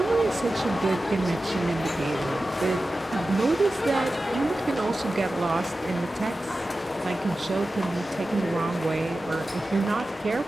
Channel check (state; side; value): normal; both; correlation 0.94